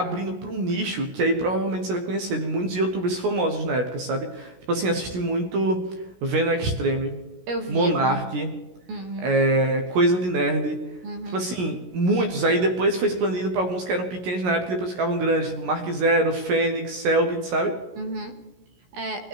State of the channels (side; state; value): left; late; 16 ms